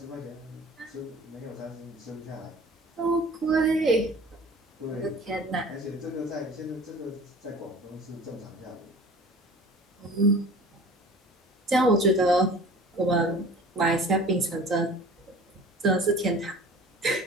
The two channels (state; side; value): normal; both; correlation 0.44